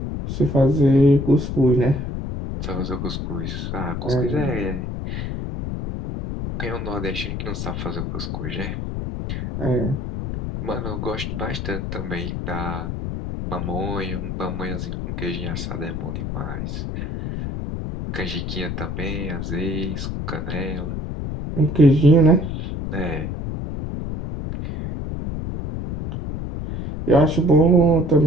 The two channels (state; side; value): noise; left; rumble, 4 dB below the sound